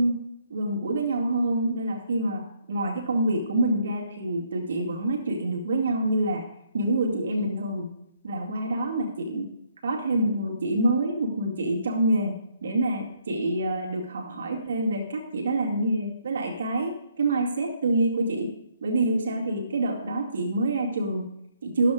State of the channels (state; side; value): inverted; both; correlation -0.70